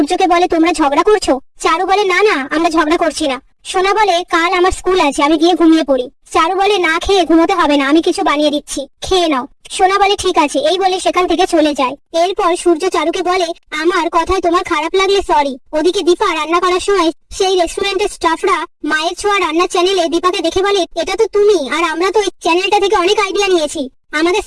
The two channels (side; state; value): both; identical; correlation 1.00